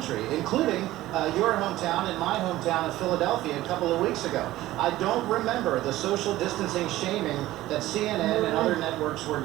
including your hometown and my hometown of Philadelphia a couple of weeks ago. I don't remember the social distancing shaming that CNN and other networks were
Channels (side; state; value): left; quieter; 16.0 dB